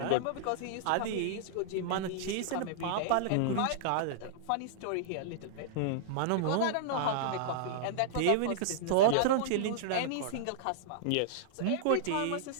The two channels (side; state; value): both; different; correlation -0.02